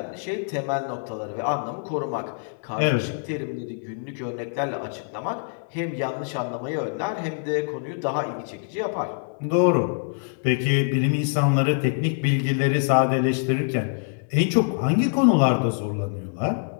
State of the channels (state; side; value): silent; right; digital silence